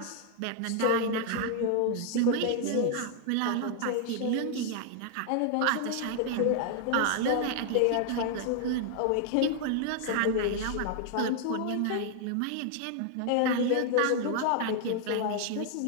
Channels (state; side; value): different; both; correlation 0.00